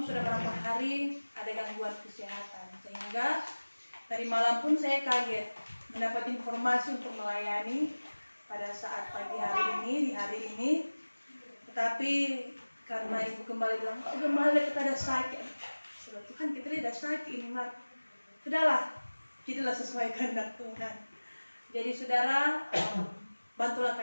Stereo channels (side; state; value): both; inverted; correlation -1.00